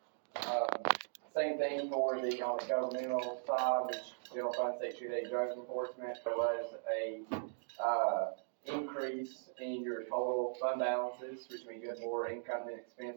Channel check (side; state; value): left; silent; digital silence